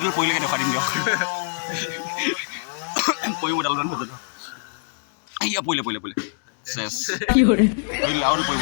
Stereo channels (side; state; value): right; silent; 63 dB below the other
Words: পৰিলেকে দেখুৱাই দিম দিয়ক। পৰিব ডালমান হৈ যাব। পৰিলে চেছ কি কৰে আৰু পৰিব